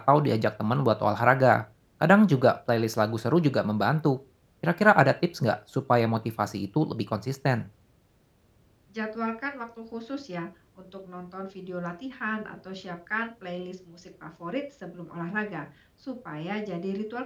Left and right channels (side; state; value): both; identical; correlation 1.00